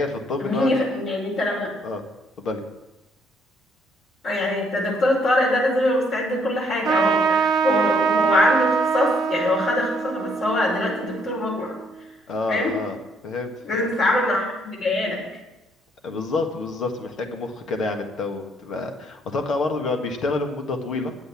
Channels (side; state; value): both; normal; correlation 0.68